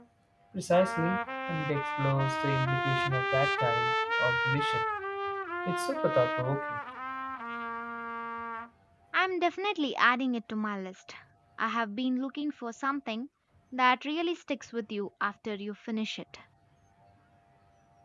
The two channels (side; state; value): both; identical; correlation 1.00